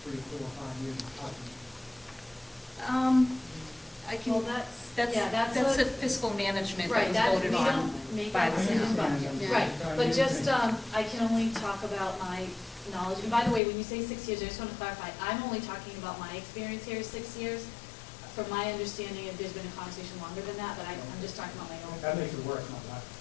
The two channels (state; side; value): drops out; right; at 13.6 s